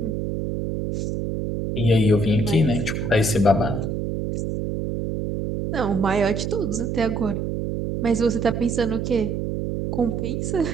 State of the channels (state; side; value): noise; right; hum, 2 dB below the sound